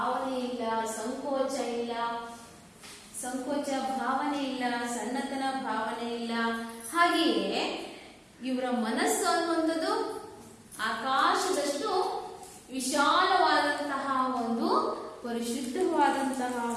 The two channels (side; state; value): both; identical; correlation 1.00